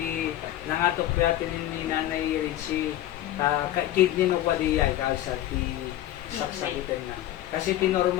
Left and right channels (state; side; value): quieter; right; 13.5 dB